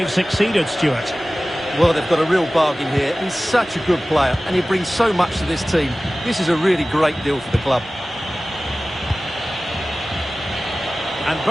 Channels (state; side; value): normal; both; correlation 0.97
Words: succeeded, Stuart. Well, they've got a real bargain here. He's such a good player, and he brings so much to this team. This is a really great deal for the club. And